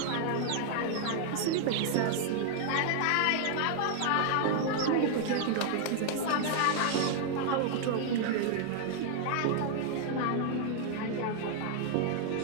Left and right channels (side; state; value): both; different; correlation 0.00